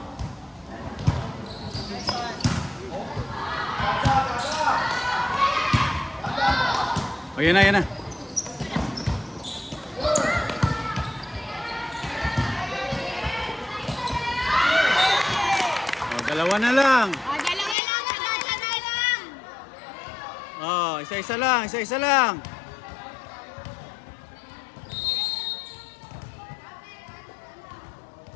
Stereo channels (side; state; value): right; drops out; at 17.8 s